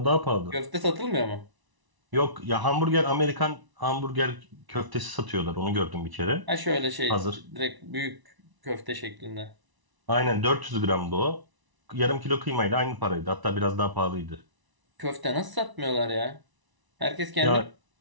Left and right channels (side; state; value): left; late; 1.0 ms